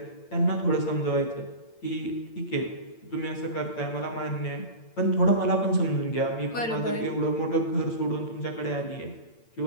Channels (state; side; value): late; right; 8.8 ms